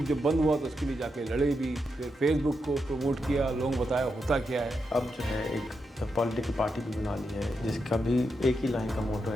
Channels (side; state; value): both; normal; correlation 0.85